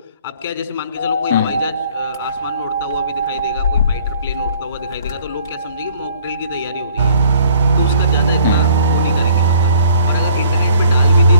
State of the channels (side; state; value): both; inverted; correlation -0.57